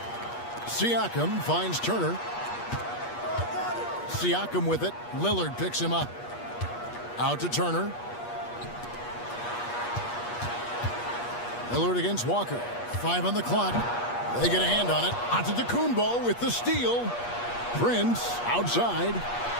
Siakam finds Turner. Siakam with it. Lillard picks him up. Out to Turner. Lillard against Walker. 5 on the clock. They get a hand on it. Antetokounmpo with the steal. Prince outside.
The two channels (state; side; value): late; right; 8.4 ms